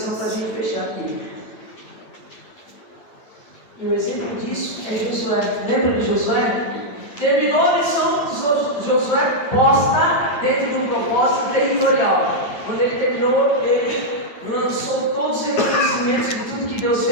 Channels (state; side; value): late; right; 9.0 ms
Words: para a gente fechar aqui. E o exemplo disso é Josué. Lembra de Josué? Terminou a missão de Josué posta dentro de um propósito territorial. Quando ele terminou, ele lançou todos os reconhecimentos de tudo que Deus